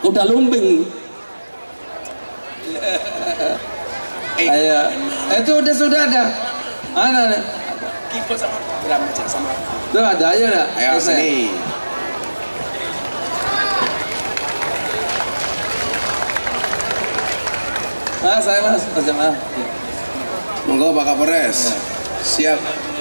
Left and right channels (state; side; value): inverted; both; correlation -1.00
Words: lumping. Ayo, itu sudah ada. Mana nih? Keyboard sama drum aja sama. Tuh ada aja dah. Ayo sini. Saya mas jamaah. Monggo Pak Kapolres. Ya. Siap.